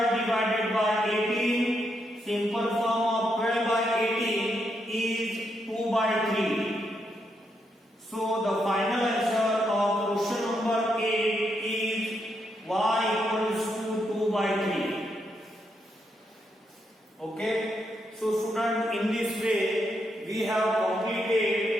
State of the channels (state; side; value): normal; both; correlation 0.80